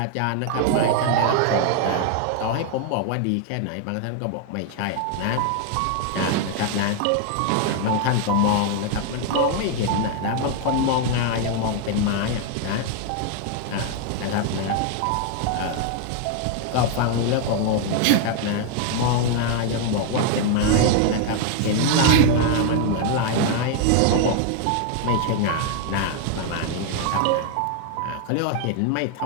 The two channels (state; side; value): different; both; correlation 0.00